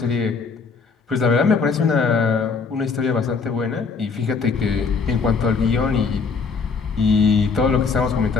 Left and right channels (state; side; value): quieter; right; 5.0 dB